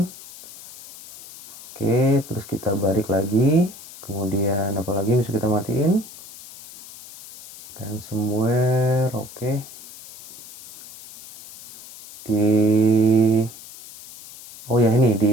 Oke, terus kita balik lagi. Kemudian apa lagi bisa kita matiin? Ransomware, oke. Oh ya, ini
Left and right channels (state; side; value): noise; left; hiss, 17 dB below the sound